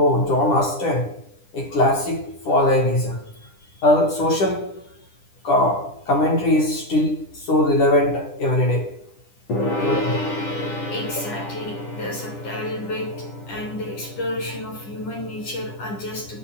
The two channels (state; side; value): late; right; 10 ms